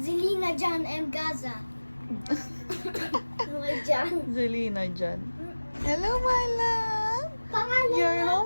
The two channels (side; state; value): both; inverted; correlation -1.00